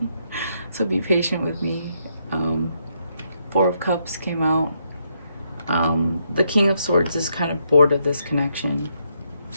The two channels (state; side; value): inverted; both; correlation -0.77